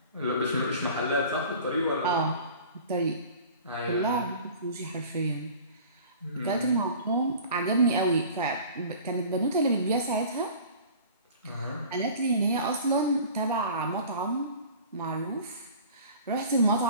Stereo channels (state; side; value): inverted; both; correlation -0.44